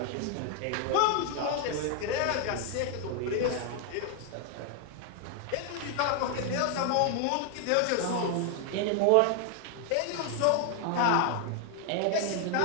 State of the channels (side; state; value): both; different; correlation 0.00